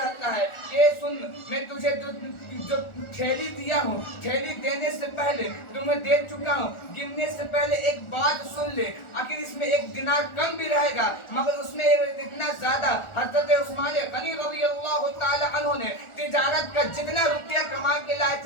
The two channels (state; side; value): late; right; 1.4 ms